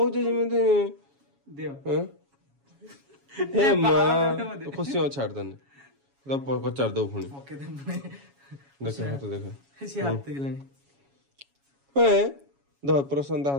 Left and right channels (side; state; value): left; late; 7.2 ms